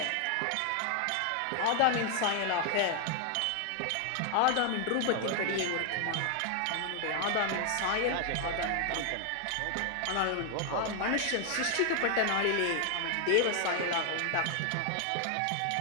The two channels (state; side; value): different; both; correlation 0.00